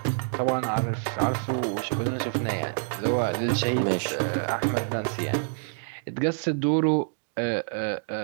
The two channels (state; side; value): silent; left; digital silence